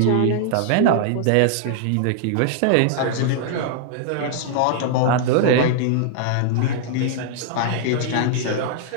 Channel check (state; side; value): different; both; correlation -0.01